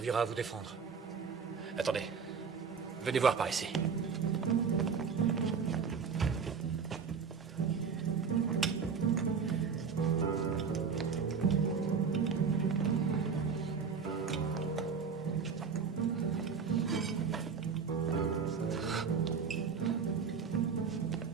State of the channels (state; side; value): quieter; left; 5.9 dB